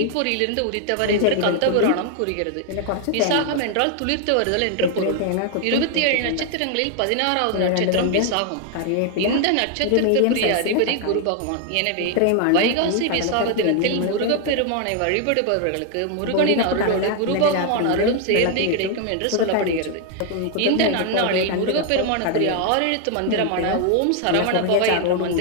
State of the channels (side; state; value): both; different; correlation 0.00